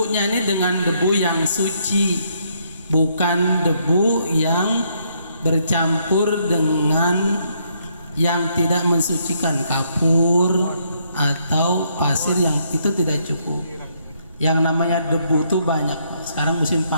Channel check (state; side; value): inverted; both; correlation -0.72